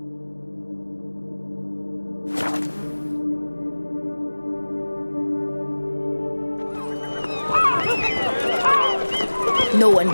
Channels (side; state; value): both; inverted; correlation -1.00